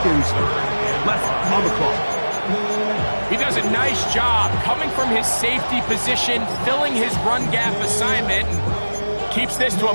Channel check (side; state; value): both; inverted; correlation -1.00